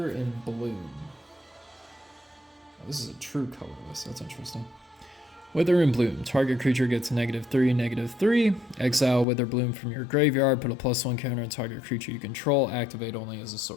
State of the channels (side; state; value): right; drops out; at 9.2 s